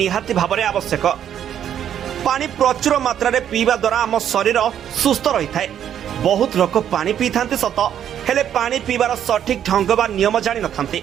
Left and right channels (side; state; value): left; quieter; 9.8 dB